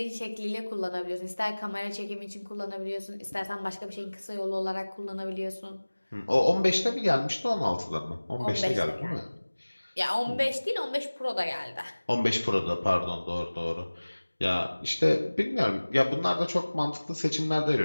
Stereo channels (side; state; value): both; inverted; correlation -1.00